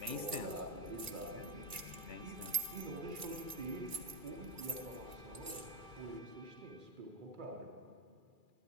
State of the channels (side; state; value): left; late; 2.3 ms